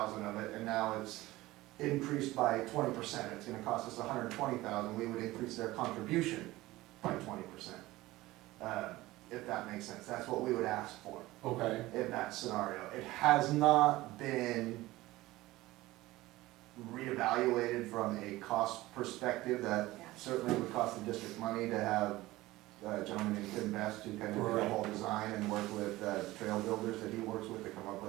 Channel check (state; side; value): quieter; left; 18.2 dB